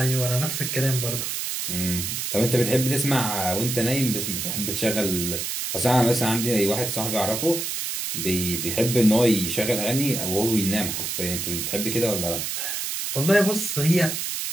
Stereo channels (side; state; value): right; noise; hiss, 3 dB below the sound